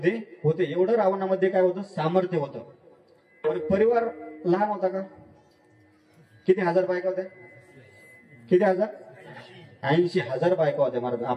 होते. एवढं रावणामध्ये काय होतं? सामर्थ्य होतं. बरं, परिवार लहान होता का? किती हजार बायका होत्या? किती हजार? 80,000 बायका होत्या महाराज.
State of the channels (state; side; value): identical; both; correlation 1.00